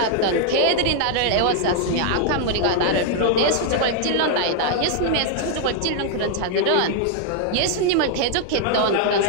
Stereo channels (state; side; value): different; both; correlation 0.00